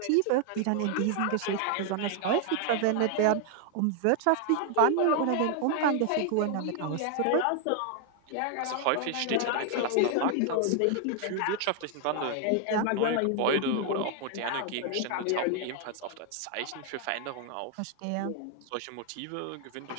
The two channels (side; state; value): both; different; correlation 0.00